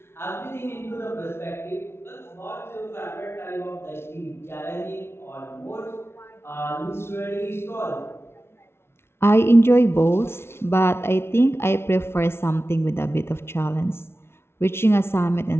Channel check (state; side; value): late; right; 0.12 ms